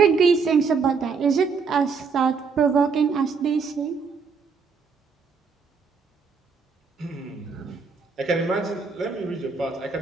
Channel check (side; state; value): left; quieter; 5.3 dB